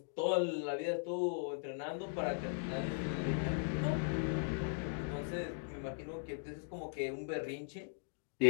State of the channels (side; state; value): right; silent; digital silence